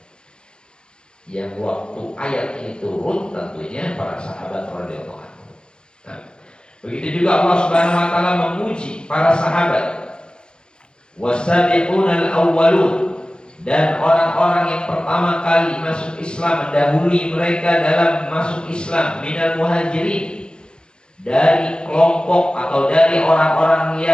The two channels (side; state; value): right; late; 0.049 ms